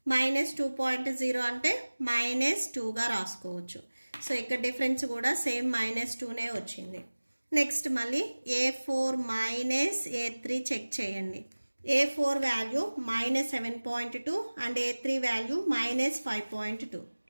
అంటే -2గా రాసుకోవచ్చు. సో ఇక్కడ డిఫరెన్స్ కూడా సేమ్ -2నే వచ్చింది. నెక్స్ట్ మళ్ళీ A4 - A3 చెక్ చేయండి. A4 value -7.2 and A3 value -5.2.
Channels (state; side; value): inverted; both; correlation -1.00